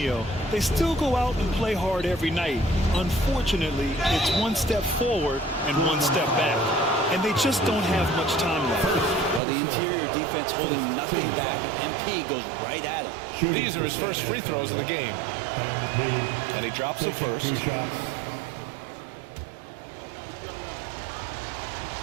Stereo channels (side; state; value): left; drops out; at 9.4 s